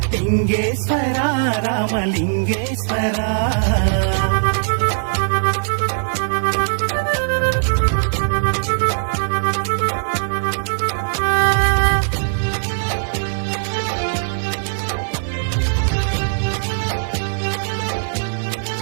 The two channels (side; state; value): left; silent; 56 dB below the other